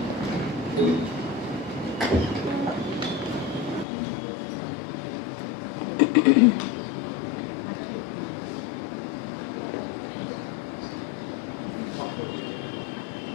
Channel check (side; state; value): right; drops out; at 3.9 s